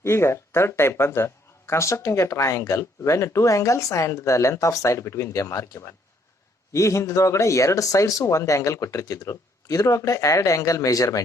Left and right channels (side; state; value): both; normal; correlation 0.67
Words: ಈಗ third type ಬಂದು constructing a triangle when two angles and the length of side between them are given. ಈ ಹಿಂದಿನೊಳಗಡೆ ಎರಡು sides ಒಂದು angle ಕೊಟ್ಟಿರ್ತಿದ್ರು. ಇದ್ರೊಳಗಡೆ ಎರಡು angle